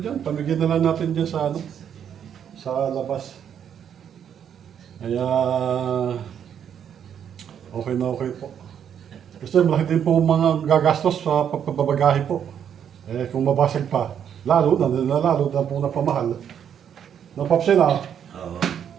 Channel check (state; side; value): quieter; left; 8.7 dB